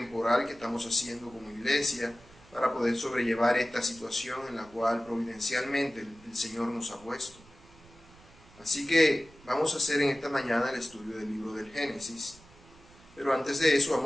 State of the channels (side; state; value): right; noise; rumble, 24 dB below the sound